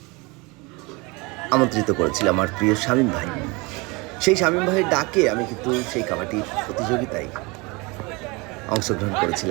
আমন্ত্রিত করেছিল আমার প্রিয় শামীম ভাই। সেই শামীম ভাইয়ের ডাকে আমি কিন্তু সেই কাবাডি প্রতিযোগিতায় অংশগ্রহণ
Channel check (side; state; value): left; quieter; 26.4 dB